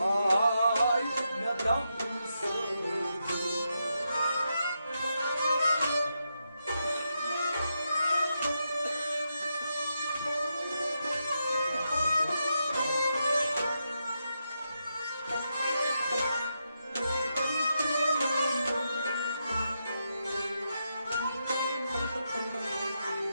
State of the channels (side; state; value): both; inverted; correlation -0.85